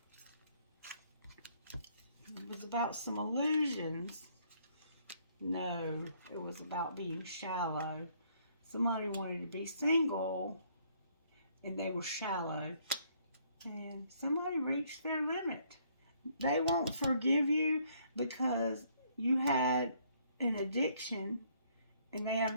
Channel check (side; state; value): both; inverted; correlation -0.66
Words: It was about some illusions. No, it was about being shallow. Somebody wanted to be single, and they were shallow. And somebody reached their limit. They won't forgive you because you had an addiction and they have